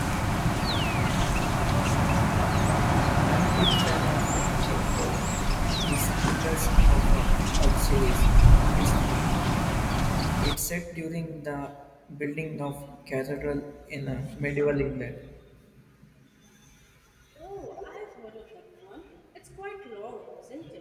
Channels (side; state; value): both; identical; correlation 1.00